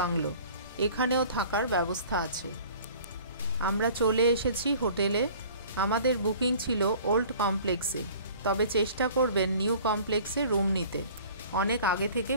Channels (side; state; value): both; inverted; correlation -0.48